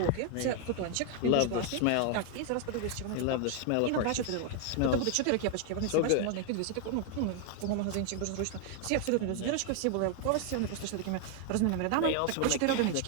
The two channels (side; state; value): both; different; correlation 0.00